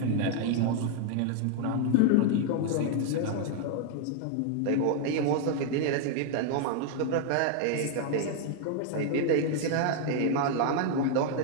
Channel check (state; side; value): different; both; correlation 0.00